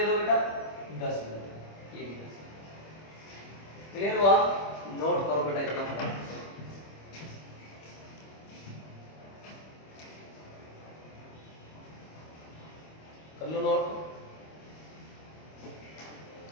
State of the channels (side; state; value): right; late; 25 ms